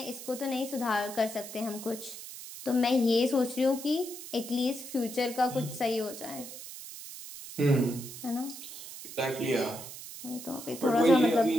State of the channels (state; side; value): noise; right; hiss, 12 dB below the sound